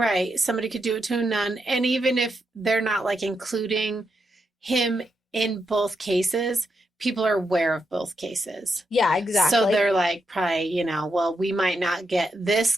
Somebody could do it to a nun. And even if they're not including him in both cases, people are aware of both cases. Yeah, exactly. So they're probably, well, we might not get this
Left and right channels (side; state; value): both; normal; correlation 0.83